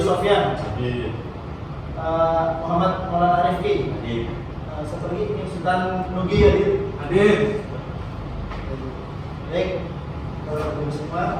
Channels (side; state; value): both; identical; correlation 1.00